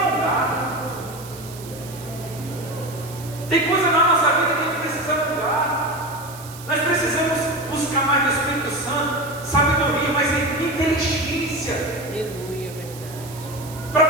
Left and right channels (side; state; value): right; noise; hiss, 17 dB below the sound